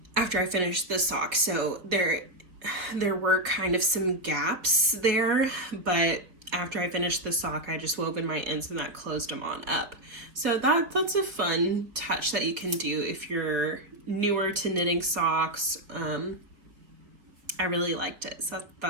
after I finished the sock. So there were kind of some gaps there, but after I finished the sock, I just wove in my ends and that closed them on up. So that's a fun touch that you can do if you're newer to knitting socks. I really liked it, so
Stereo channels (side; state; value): left; late; 4.1 ms